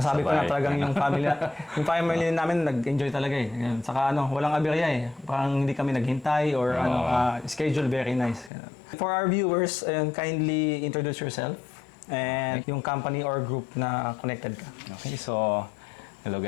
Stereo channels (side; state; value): right; drops out; at 8.5 s